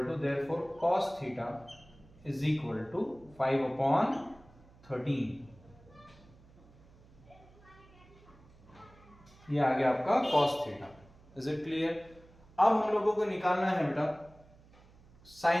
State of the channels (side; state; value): right; noise; hum, 25 dB below the sound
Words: to, therefore cos theta is equal to 5 upon 13। ये आ गया आपका cos theta. Is it clear? अब हम लोगों को निकालना है बेटा